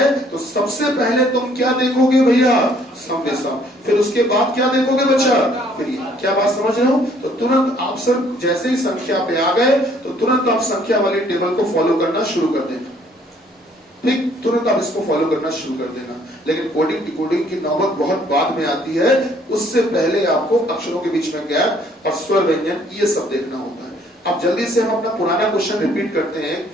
तो सबसे पहले तुम क्या देखोगे भैया, सम विषम, फिर उसके बाद क्या देखोगे बच्चा, फिर ये। क्या बात समझ रहे हो। तो तुरंत आप सर जैसे ही संख्या पे आ गए तो तुरंत आप संख्या वाली टेबल को फॉलो करना शुरू कर देना, ठीक, तुरंत आप इसको फॉलो करना शुरू कर देना। लेकिन कोडिंग डिकोडिंग की नौबत बहुत बाद में आती है, उससे पहले आपको अक्षरों के बीच में गैप और स्वर व्यंजन ये सब देखना होता है। अब जल्दी से हम अपना पुराना क्वेश्चन रिपीट करते हैं,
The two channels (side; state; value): both; normal; correlation 0.62